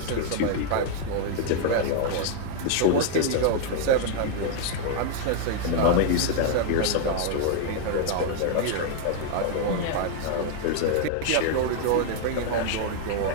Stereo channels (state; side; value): different; both; correlation 0.00